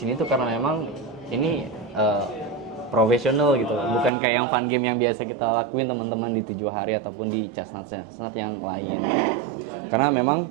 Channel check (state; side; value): drops out; left; at 4.1 s